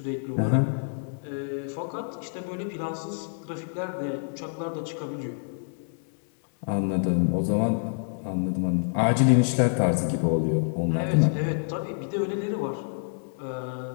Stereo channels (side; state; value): right; silent; 60 dB below the other